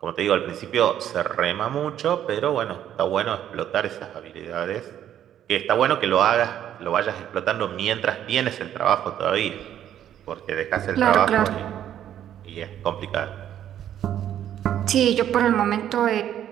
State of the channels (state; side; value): quieter; left; 10.7 dB